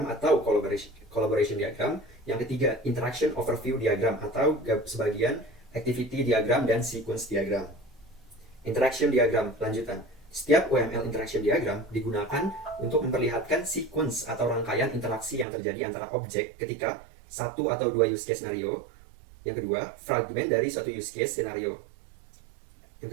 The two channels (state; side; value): drops out; left; at 15.5 s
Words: atau collaboration diagram, yang ketiga interaction overview diagram atau sebagian activity diagram dan sequence diagram. Interaction diagram lanjutan. Setiap UML interaction diagram digunakan untuk memperlihatkan sequence atau rangkaian interaksi yang terjadi antara objek ketika satu atau dua use case scenario. Yang kedua, fragmen dari suatu use case scenario.